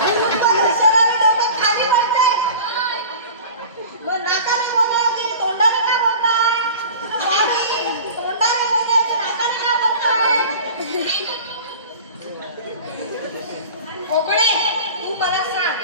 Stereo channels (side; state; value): both; inverted; correlation -0.39